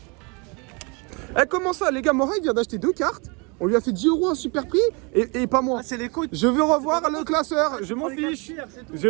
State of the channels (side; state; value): left; quieter; 30.9 dB